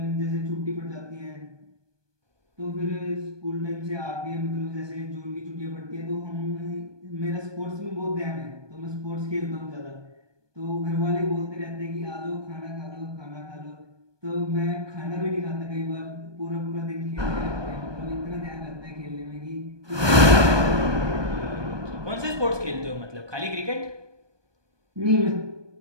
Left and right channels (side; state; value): left; late; 1.2 ms